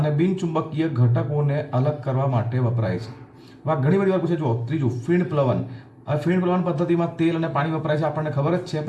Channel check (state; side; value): identical; both; correlation 1.00